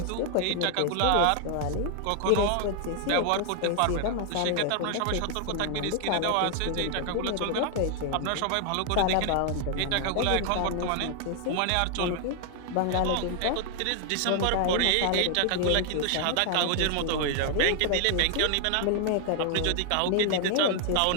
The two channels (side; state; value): both; different; correlation 0.00